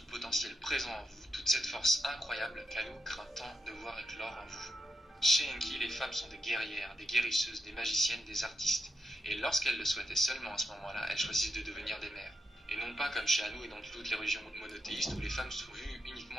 le potentiel présent en vous, toute cette force incroyable qu'Anu craint tant de voir éclore en vous. Chez Enki, les femmes sont des guerrières, des guérisseuses, des magiciennes, des artistes, et lorsqu'elles le souhaitaient seulement à ce moment-là, elles choisissent de devenir des mères. Et non pas comme chez Anu et dans toutes les religions monothéistes où les femmes sont vues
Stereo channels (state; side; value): normal; both; correlation 0.85